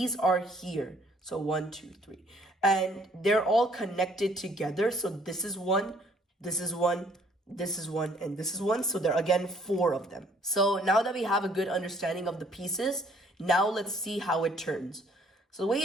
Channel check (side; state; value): both; normal; correlation 0.62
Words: are here. So 1, 2, 3, and they're all connected together. So this is 1, this is 1, this is 1, and this is 1. So there are again 4 of them. So now that we have a good understanding of the pieces, now let's see how it turns. So the way